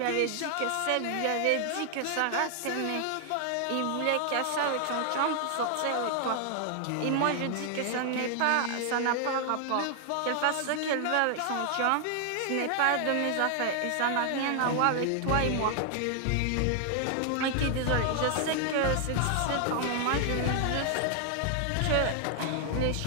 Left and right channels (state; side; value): different; both; correlation 0.00